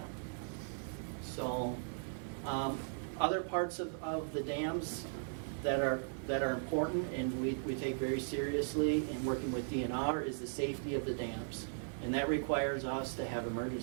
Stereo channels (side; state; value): left; silent; digital silence